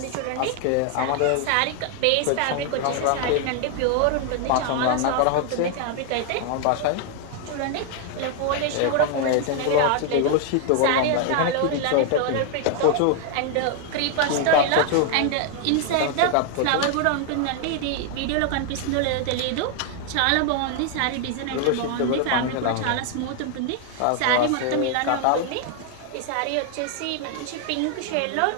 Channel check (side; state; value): both; different; correlation 0.00